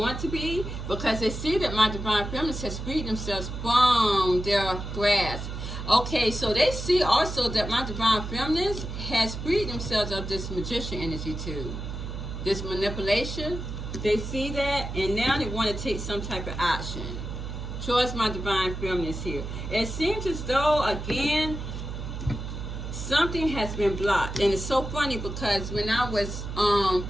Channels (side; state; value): right; noise; hum, 6 dB below the sound